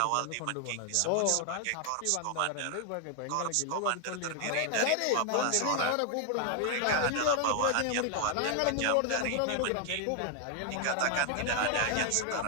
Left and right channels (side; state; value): both; different; correlation 0.00